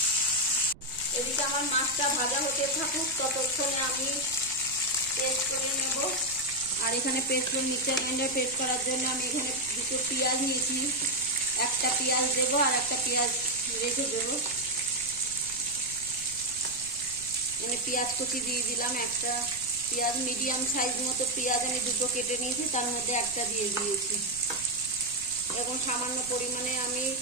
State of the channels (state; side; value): noise; right; rumble, 20 dB below the sound